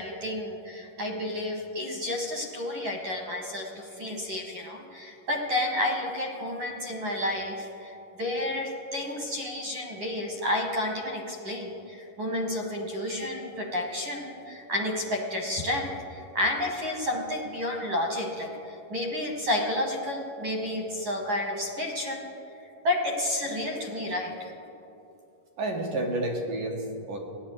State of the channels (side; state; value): left; late; 11 ms